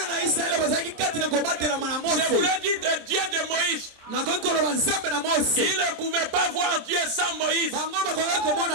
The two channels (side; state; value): left; late; 27 ms